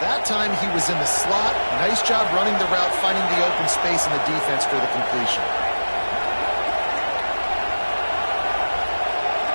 That time he was in the slot. Nice job running the route, finding the open space in the defense for the completion.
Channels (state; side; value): inverted; both; correlation -1.00